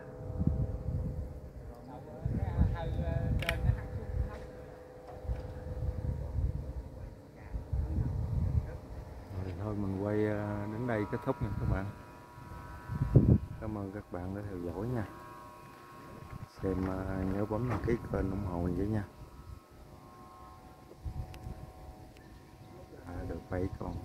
Rồi thôi mình quay đến đây kết thúc nha các bạn. Cảm ơn các bạn đã theo dõi nha. Xem nhớ bấm đăng ký kênh ủng hộ mình với nha. Được 7 con,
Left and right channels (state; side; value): identical; both; correlation 1.00